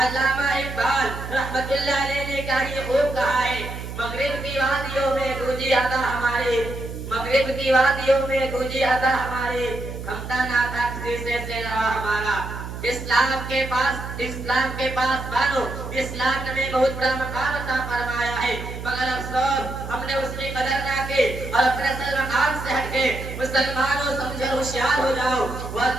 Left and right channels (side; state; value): right; noise; hum, 8 dB below the sound